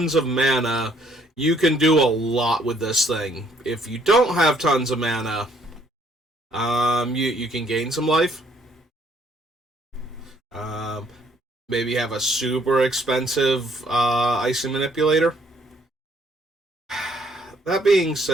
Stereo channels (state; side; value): normal; both; correlation 0.65